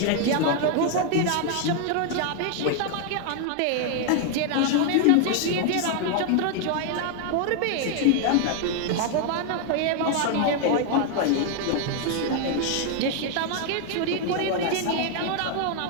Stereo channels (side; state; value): both; different; correlation 0.00